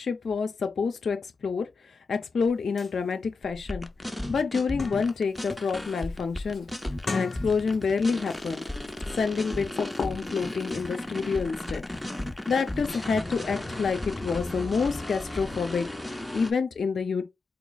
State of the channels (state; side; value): quieter; right; 4.3 dB